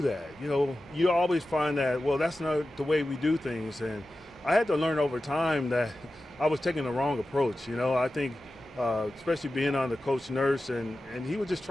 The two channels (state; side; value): normal; both; correlation 0.93